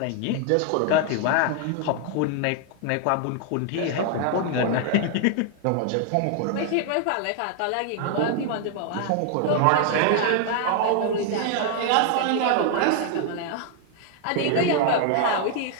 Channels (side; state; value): both; different; correlation 0.00